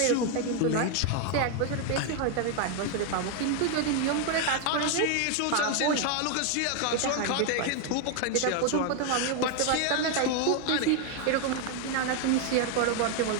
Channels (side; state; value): both; different; correlation 0.01